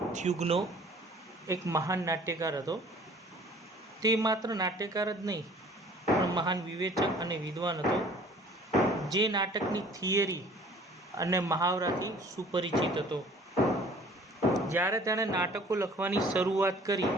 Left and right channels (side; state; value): both; normal; correlation 0.51